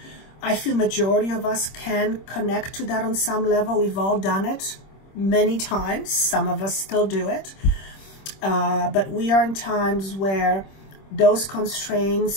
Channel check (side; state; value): right; late; 26 ms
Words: I feel majority of us can connect to that on some level. We've all done it many times. Some of us still do it. But we are in times where those